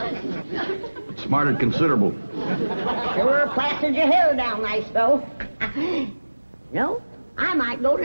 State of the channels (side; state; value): both; inverted; correlation -1.00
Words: Smarted considerable. Sure plastered your hair down nice, though. No, I might go to